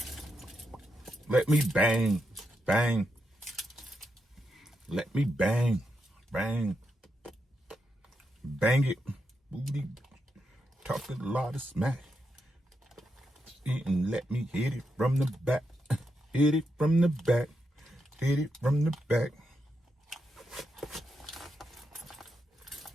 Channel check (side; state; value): both; normal; correlation 0.84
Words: Let me bang. Bang. Let me bang. Bang. Bang it. Booty. Talking a lot of smack. And let me hit it from the back. Hit it from the back. Hit it from the back.